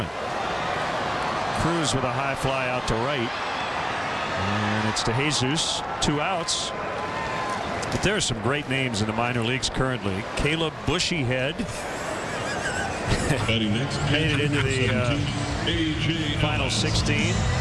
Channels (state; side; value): identical; both; correlation 1.00